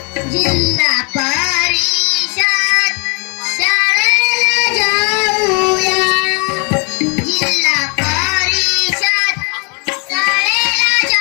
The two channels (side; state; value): right; quieter; 34.1 dB